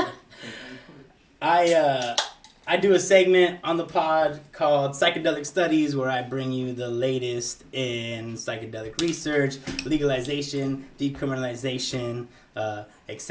I do a segment on the pod called Psychedelic Studies, where I bring you the latest in psychedelic research, legalization, decriminalization,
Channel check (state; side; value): identical; both; correlation 1.00